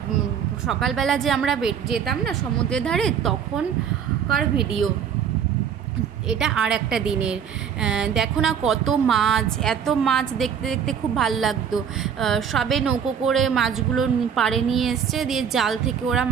সকালবেলা যে আমরা যেতাম না সমুদ্রের ধারে তখনকার ভিডিও। এটা আর একটা দিনের। দেখো না কত মাছ, এত মাছ দেখতে দেখতে খুব ভাল লাগতো। সবে নৌকো করে মাছগুলো পাড়ে নিয়ে এসছে, দিয়ে জাল থেকে ওরা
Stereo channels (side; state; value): left; quieter; 7.8 dB